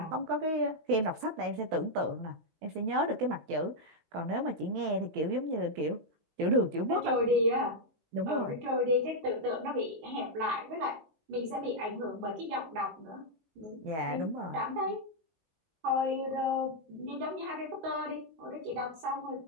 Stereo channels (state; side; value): late; left; 19 ms